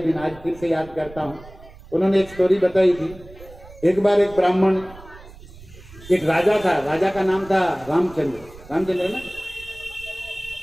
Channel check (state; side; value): noise; right; rumble, 19 dB below the sound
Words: आज फिर से याद करता हूं। उन्होंने एक स्टोरी बताई थी। एक बार एक ब्राह्मण, एक राजा था, राजा का नाम था रामचंद्र ना,